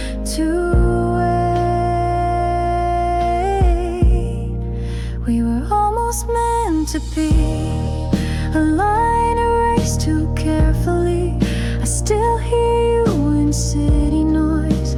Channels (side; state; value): both; identical; correlation 1.00